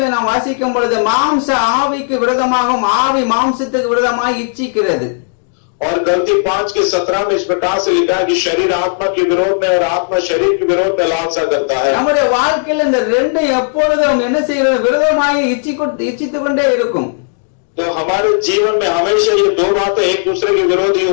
நாம் வாசிக்கும் பொழுது மாம்ச ஆவிக்கு விரோதமாகவும் ஆவி மாம்சத்துக்கு விரோதமாக இச்சிக்கிறது. और गलती 5:17 में इस प्रकार से लिखा है कि शरीर आत्मा के विरोध में और आत्मा शरीर के विरोध में लालसा करता है. நம்முடைய வாழ்க்கையில் இந்த ரெண்டு எப்பொழுதும் என்ன செய்கிறது, விரோதமாக இச்சித்துக் கொண்டே இருக்கும். तो हमारे जीवन में हमेशा ये दो बातें एक दूसरे के विरोधी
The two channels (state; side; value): silent; right; digital silence